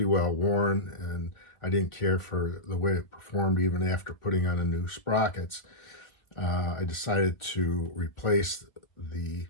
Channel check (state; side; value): late; right; 1.6 ms